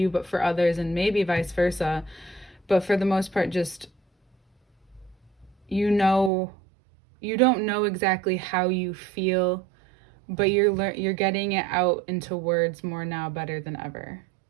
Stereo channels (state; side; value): drops out; left; at 6.3 s